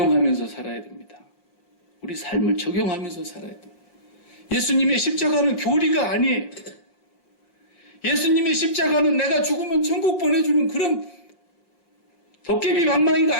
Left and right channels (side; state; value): right; late; 5.7 ms